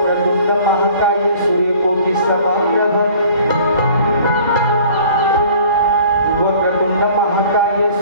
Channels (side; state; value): both; inverted; correlation -0.50